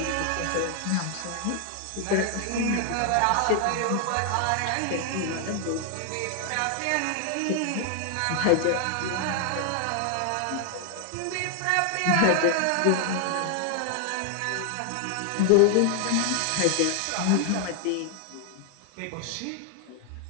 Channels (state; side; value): different; both; correlation 0.00